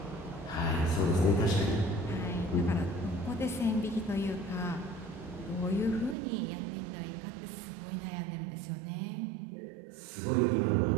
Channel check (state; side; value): drops out; left; at 6.2 s